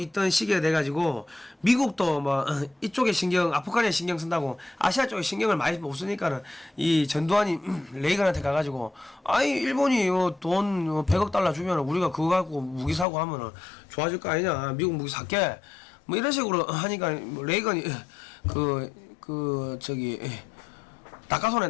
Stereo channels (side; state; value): right; drops out; at 13.1 s